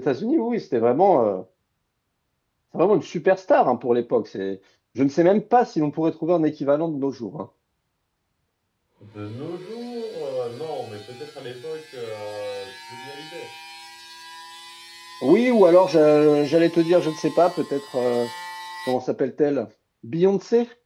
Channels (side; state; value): both; identical; correlation 1.00